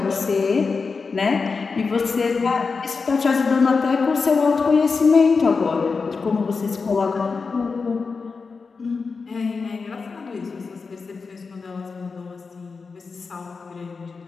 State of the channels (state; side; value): quieter; right; 4.7 dB